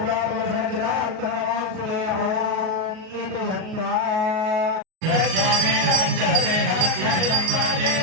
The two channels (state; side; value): late; left; 38 ms